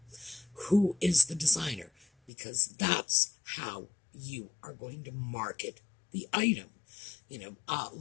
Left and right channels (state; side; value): drops out; right; at 2.3 s